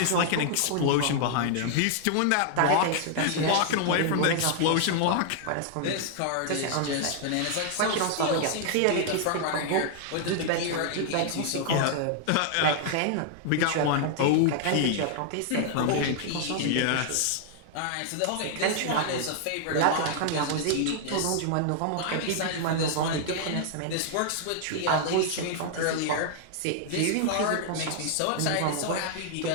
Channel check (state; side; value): different; both; correlation 0.00